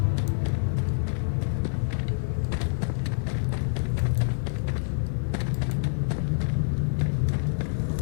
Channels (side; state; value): right; silent; digital silence